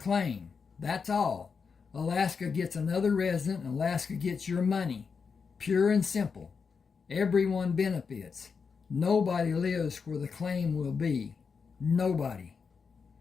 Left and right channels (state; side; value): quieter; right; 5.6 dB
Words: That's all. Alaska gets another resident and Alaska gets your money. Pure and simple. Everyone benefits. Nobody lives where the claim will be. Nobody.